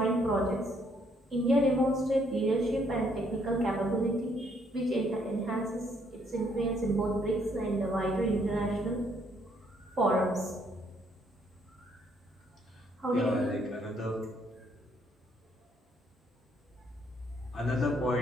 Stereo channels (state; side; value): normal; both; correlation 0.69